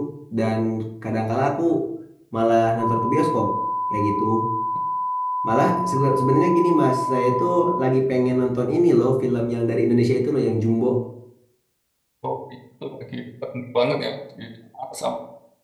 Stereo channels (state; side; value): identical; both; correlation 1.00